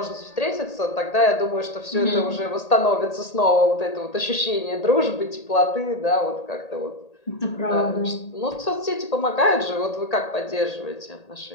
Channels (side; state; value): right; late; 1.8 ms